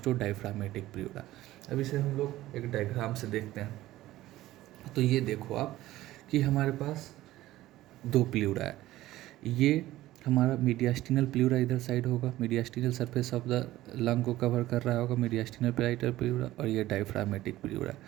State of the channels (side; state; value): left; quieter; 15.8 dB